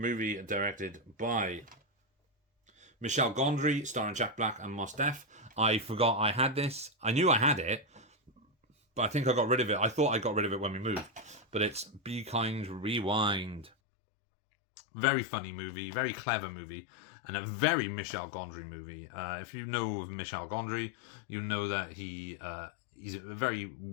directed by Michel Gondry, starring Jack Black and Mos Def. I forgot I had this. I knew I had it, but I think I got rid of it. I thought I got rid of it when we moved. But it's Be Kind, Rewind. Very funny movie. Very clever movie. And a very Michel Gondry movie. If you know of Michel Gondry, you know that he's a very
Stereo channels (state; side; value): drops out; right; at 13.7 s